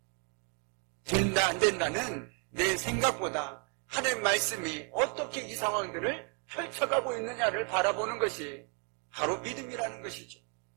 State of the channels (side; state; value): left; quieter; 32.8 dB